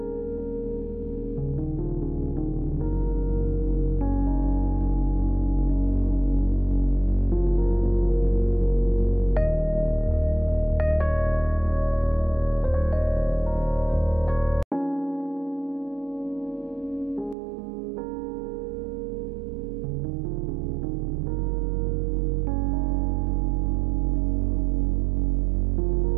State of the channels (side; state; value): left; drops out; at 17.4 s